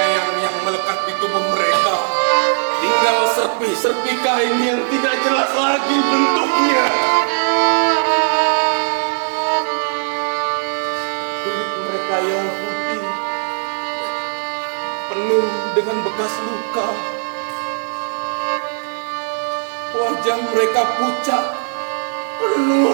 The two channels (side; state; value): left; silent; digital silence